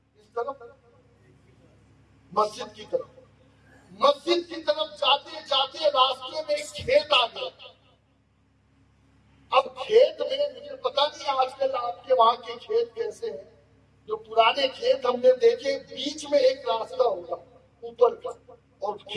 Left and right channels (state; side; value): identical; both; correlation 1.00